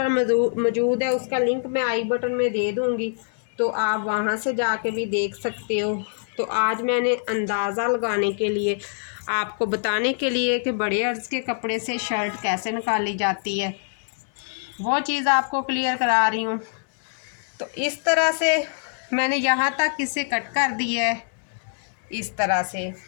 मौजूद है, उसका लिंक मैं आई बटन में दे दूँगी, तो आप वहाँ से जाके भी देख सकते हो। तो आज मैंने अंदाज़ा लगाने के लिए, आपको बताने के लिए कि बड़े अर्ज़ के कपड़े से शर्ट कैसे निकाली जाती है, वो चीज़ आपको क्लियर करा रही हूँ। तो इस तरह से मैंने यहाँ तक इसे कट कर दिया है। इस तरह से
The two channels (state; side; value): silent; right; 62 dB below the other